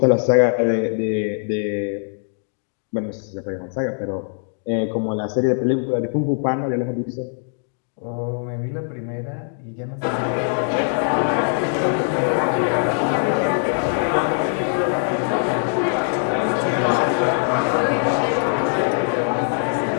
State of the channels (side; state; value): right; silent; 58 dB below the other